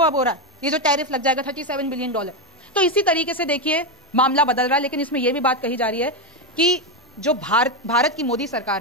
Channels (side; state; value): both; normal; correlation 0.09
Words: अब हो रहा है, ये जो टैरिफ लग जाएगा $37 बिलियन। तो इसी तरीके से देखिए मामला बदल रहा है। लेकिन इसमें यह भी बात कही जा रही है कि जो भारत की मोदी